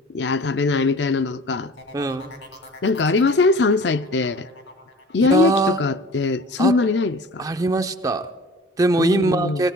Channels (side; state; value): both; normal; correlation 0.44